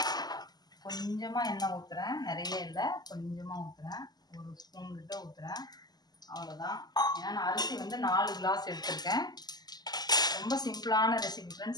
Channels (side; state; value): right; late; 0.20 ms